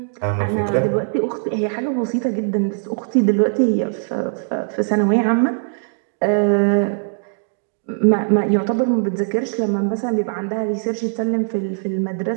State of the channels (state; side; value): silent; left; 64 dB below the other